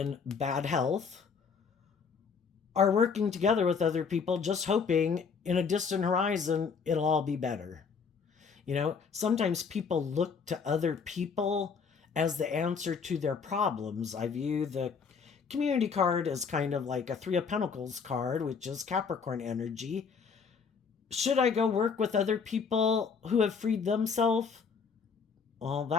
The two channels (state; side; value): quieter; right; 5.7 dB